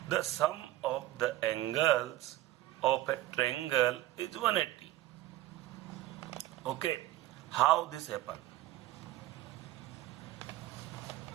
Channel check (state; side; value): quieter; left; 15.7 dB